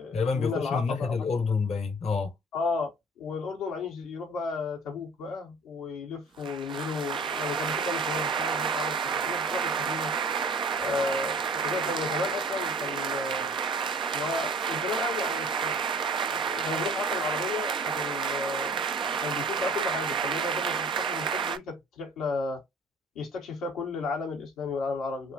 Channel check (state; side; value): normal; both; correlation 0.46